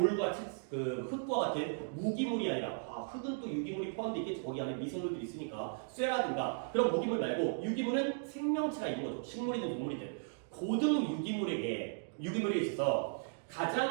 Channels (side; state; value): left; silent; digital silence